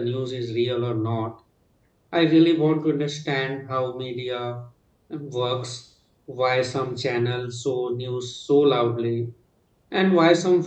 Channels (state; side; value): identical; both; correlation 1.00